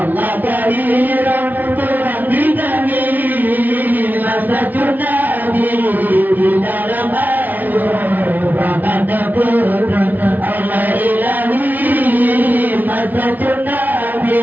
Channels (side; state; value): left; late; 0.081 ms